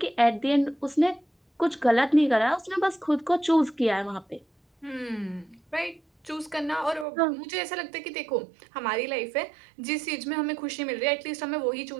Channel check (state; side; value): drops out; left; at 7.1 s